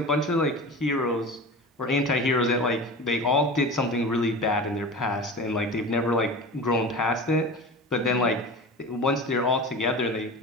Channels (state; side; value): normal; both; correlation 0.32